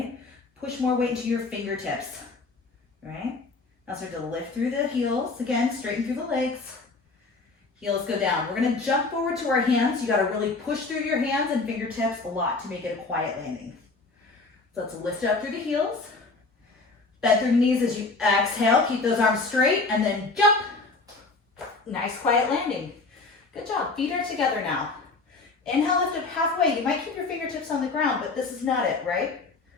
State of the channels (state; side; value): quieter; right; 3.7 dB